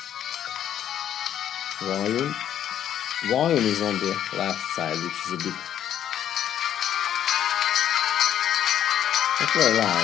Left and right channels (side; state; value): right; quieter; 10.4 dB